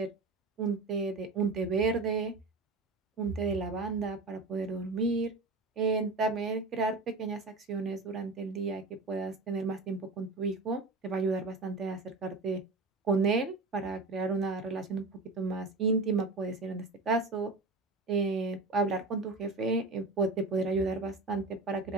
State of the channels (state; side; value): quieter; left; 3.5 dB